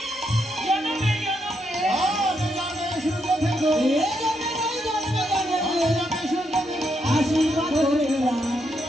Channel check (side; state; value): both; normal; correlation 0.79